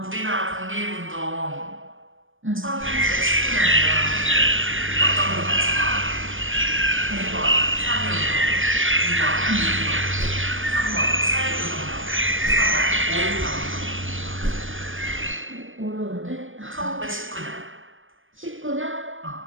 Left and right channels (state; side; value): late; left; 0.58 ms